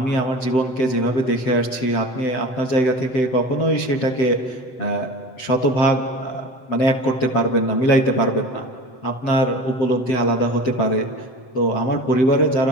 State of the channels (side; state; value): right; late; 7.8 ms